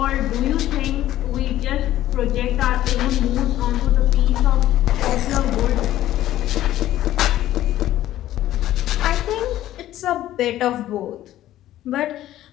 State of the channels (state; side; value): quieter; right; 13.6 dB